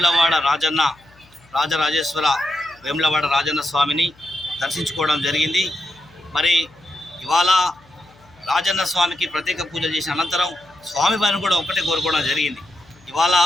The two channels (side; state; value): left; noise; hum, 29 dB below the sound